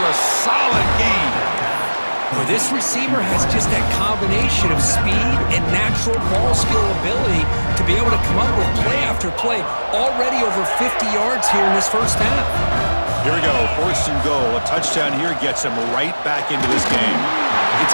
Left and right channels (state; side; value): inverted; both; correlation -1.00